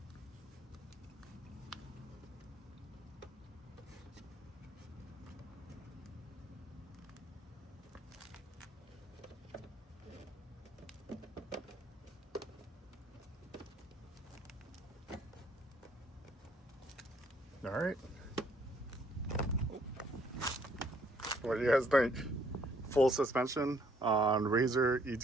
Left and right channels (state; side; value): normal; both; correlation 0.65